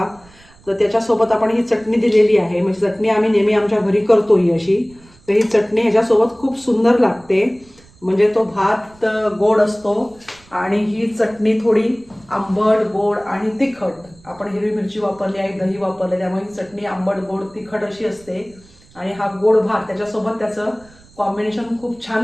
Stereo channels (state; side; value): noise; right; rumble, 27 dB below the sound